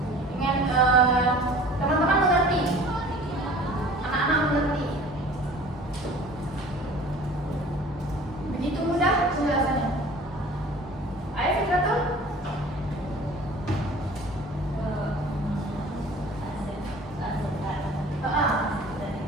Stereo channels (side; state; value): both; normal; correlation 0.46